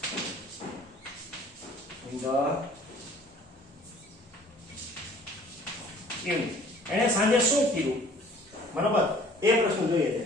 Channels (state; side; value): normal; both; correlation 0.52